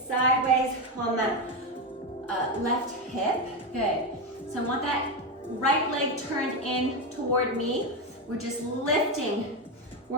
on that left hip. Good. So I want that right leg turned in toward me. We're just lifting,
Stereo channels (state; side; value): normal; both; correlation 0.12